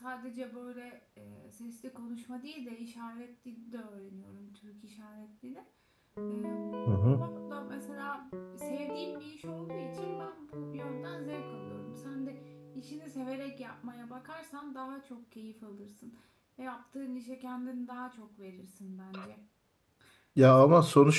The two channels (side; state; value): both; identical; correlation 1.00